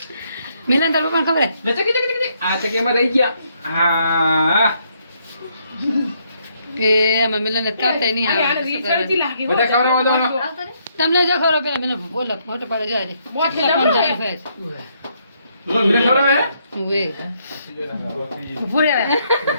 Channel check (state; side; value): inverted; both; correlation -0.73